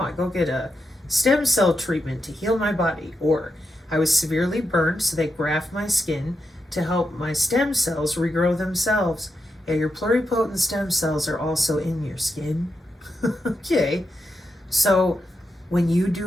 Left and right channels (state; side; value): normal; both; correlation 0.86